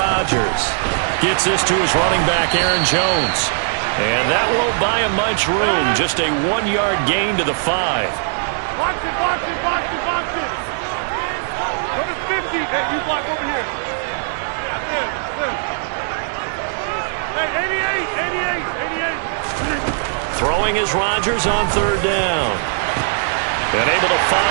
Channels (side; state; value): left; silent; 63 dB below the other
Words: gets this to his running back, Aaron Jones. And that won't buy him much room. Just a 1-yard gain to the 5. Box it, box it, box it, box it. Go to 50. Hey, you block over here. Yeah, this. Hey, 88. Throwing is Rodgers on 3rd down. And able to